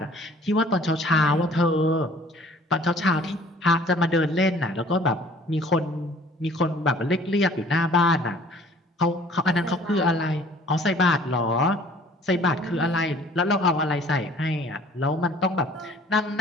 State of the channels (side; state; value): both; normal; correlation 0.53